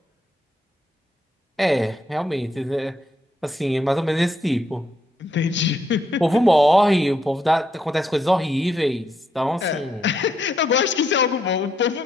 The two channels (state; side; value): normal; both; correlation 0.77